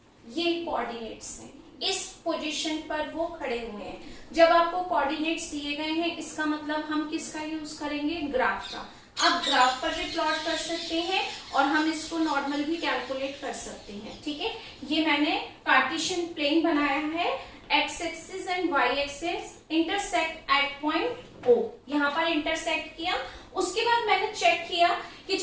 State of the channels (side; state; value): both; identical; correlation 1.00